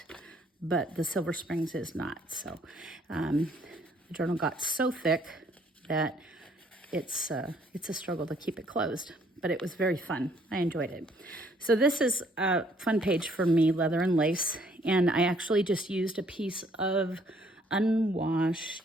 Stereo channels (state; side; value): normal; both; correlation 0.64